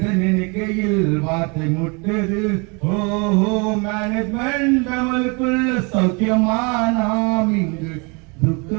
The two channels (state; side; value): quieter; left; 31.2 dB